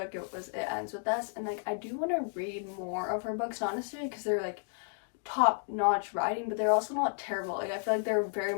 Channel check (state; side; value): silent; right; 56 dB below the other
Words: It was It Ends With Us, and like I do want to read more of her books, honestly, because they're like top-notch writing, but they're also not terrible. Like I feel like they're very